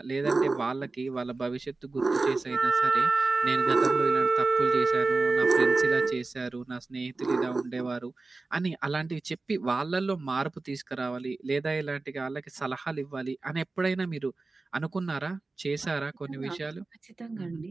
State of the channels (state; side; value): quieter; left; 3.5 dB